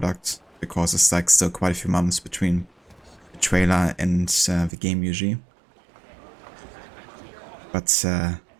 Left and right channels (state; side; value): drops out; left; at 4.7 s